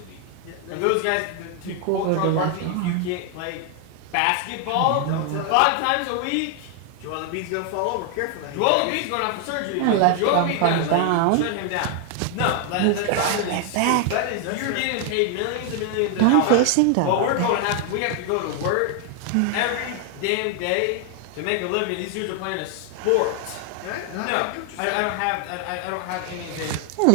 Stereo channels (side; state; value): both; different; correlation 0.00